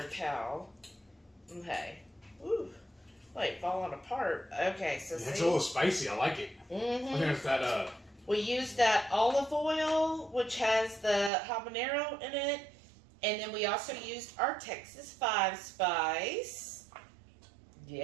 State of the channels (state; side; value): drops out; left; at 11.3 s